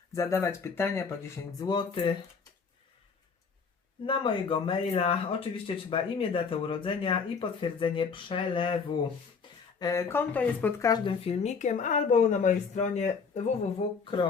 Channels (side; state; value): right; quieter; 5.4 dB